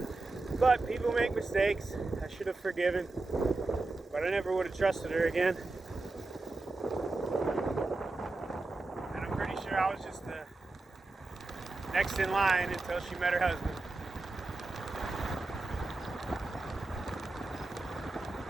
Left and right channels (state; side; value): quieter; left; 3.2 dB